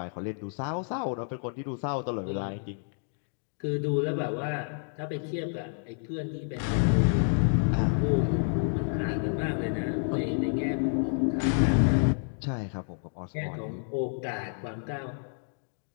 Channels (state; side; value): silent; right; 56 dB below the other